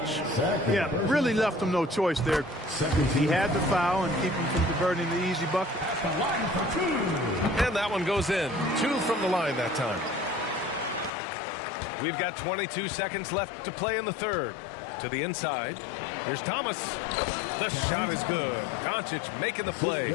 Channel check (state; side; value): drops out; right; at 11.1 s